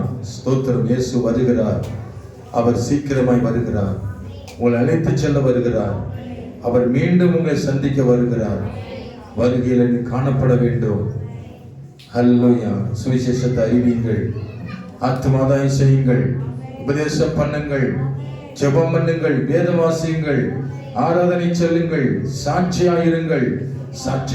ஸ்தோத்திரம். இயேசு வருகிறார். அவர் சீக்கிரமாய் வருகிறார். உங்களை அழைத்து செல்ல வருகிறார். அவர் மீண்டும் உங்களை சந்திக்க வருகிறார். வருகையில் நீ காணப்பட வேண்டும். அல்லேலூயா. சுவிசேஷத்தை அறிவியுங்கள். ஆத்துமாதாயம் செய்யுங்கள். உபதேசம் பண்ணுங்கள், ஜெபம் பண்ணுங்கள், வேத வாசியுங்கள், ஆராதனை சொல்லுங்கள், சாட்சியாயிருங்கள்,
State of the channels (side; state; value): both; identical; correlation 1.00